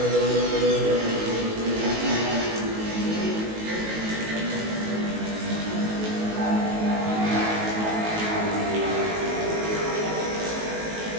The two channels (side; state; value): left; late; 19 ms